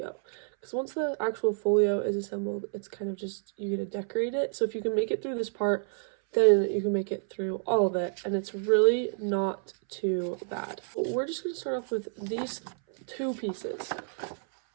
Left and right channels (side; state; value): left; silent; 58 dB below the other